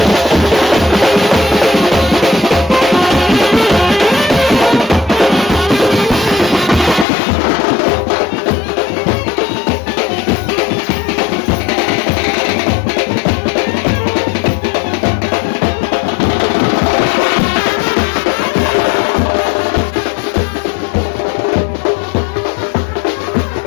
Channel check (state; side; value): drops out; right; at 7.1 s